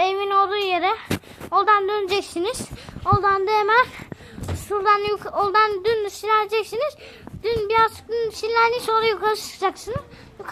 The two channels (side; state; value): both; identical; correlation 1.00